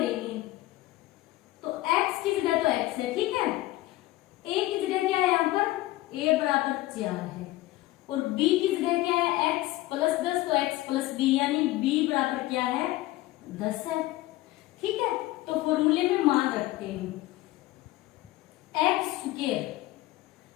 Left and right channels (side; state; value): right; quieter; 17.4 dB